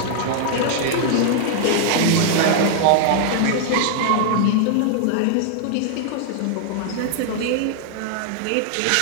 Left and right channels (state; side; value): different; both; correlation 0.00